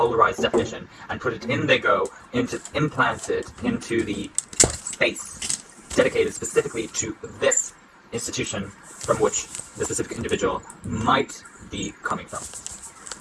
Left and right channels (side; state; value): both; identical; correlation 1.00